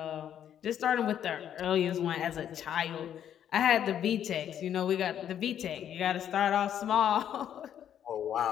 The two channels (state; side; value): quieter; right; 9.8 dB